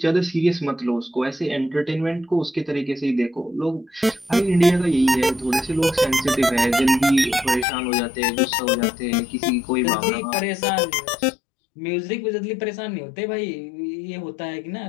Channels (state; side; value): drops out; right; at 7.7 s